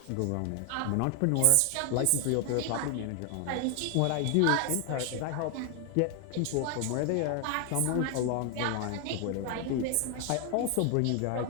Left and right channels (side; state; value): both; different; correlation 0.00